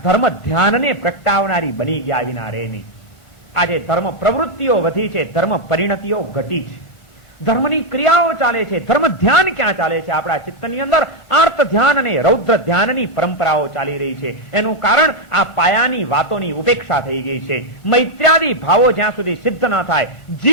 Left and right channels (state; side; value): late; right; 1.5 ms